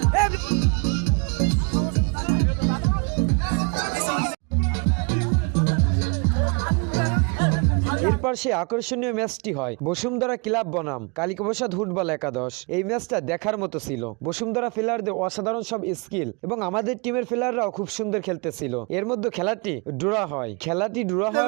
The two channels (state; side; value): quieter; left; 32.2 dB